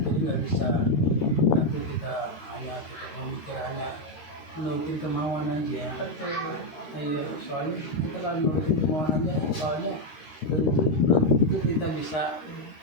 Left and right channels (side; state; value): right; late; 13 ms